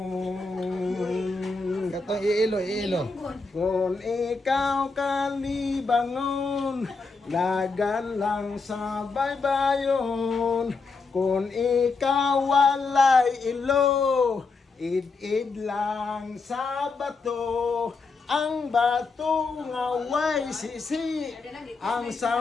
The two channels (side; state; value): right; quieter; 4.1 dB